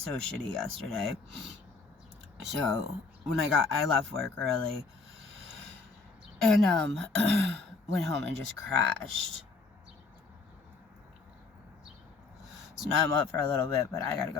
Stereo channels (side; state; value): right; quieter; 4.2 dB